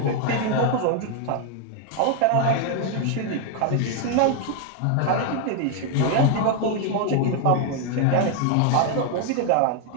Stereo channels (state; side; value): different; both; correlation 0.00